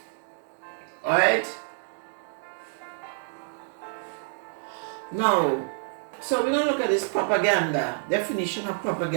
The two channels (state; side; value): silent; left; digital silence